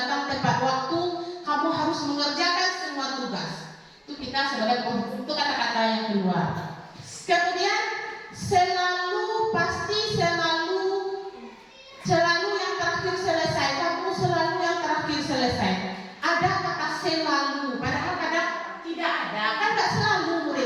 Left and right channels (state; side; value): identical; both; correlation 1.00